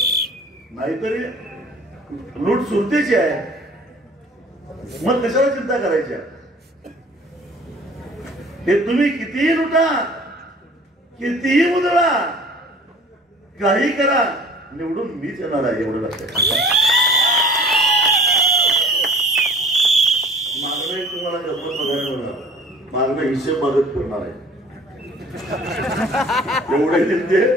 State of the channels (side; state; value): both; normal; correlation 0.49